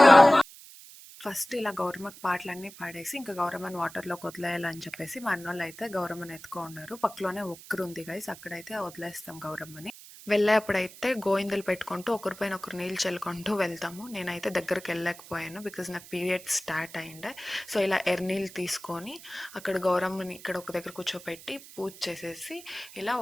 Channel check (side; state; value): right; noise; hiss, 18 dB below the sound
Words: ఫస్ట్ ఇలా గౌరమ్మకి పాటలన్నీ పాడేసి ఇంకా గౌరమ్మని వాటర్లోకి వదిలేయాలని చెప్పేసి మా అన్నోళ్ళు అయితే గౌరమ్మని ఎత్తుకో ఉన్నారు. పక్కలోనే ఒక్కరు ఉంది గైస్, అక్కడైతే వదిలేస్తాం గౌరమ్మని. వెళ్ళేప్పుడైతే గోయిందలు పెట్టుకుంటూ ఒకరిపైన ఒకరు నీళ్ళు చల్లుకుంటూ వెళ్తాము. నేనైతే దగ్గరికి వెళ్ళలేకపోయాను బికాజ్ నాకు పీరియడ్ స్టార్ట్ అయిండే. సో ఇలా ఎర్నీళ్ళు తీసుకొని అక్కడ గౌరమ్మని ఇక్కడ ఒక దగ్గర కూర్చోపెట్టి పూజ చేసేసి ఇలా